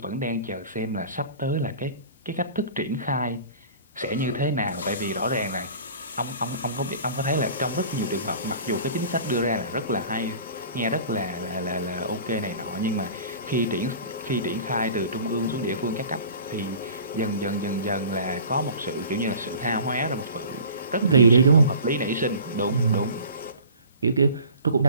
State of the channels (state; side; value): inverted; both; correlation -0.44